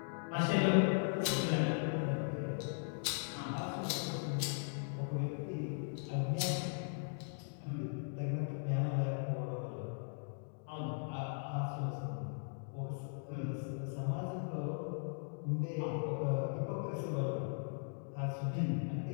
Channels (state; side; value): silent; right; digital silence